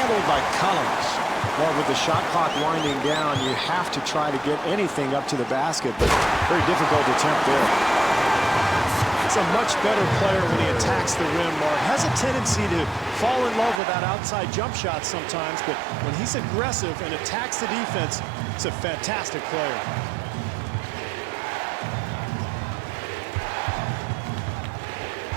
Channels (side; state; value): left; drops out; at 13.8 s